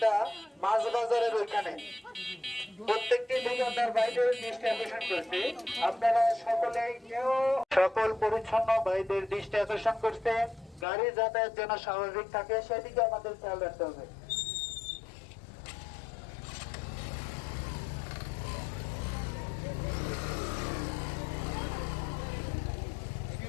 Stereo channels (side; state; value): right; drops out; at 10.9 s